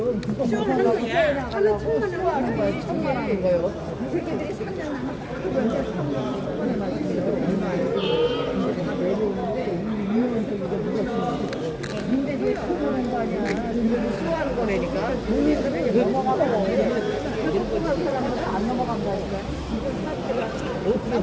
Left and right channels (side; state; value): both; identical; correlation 1.00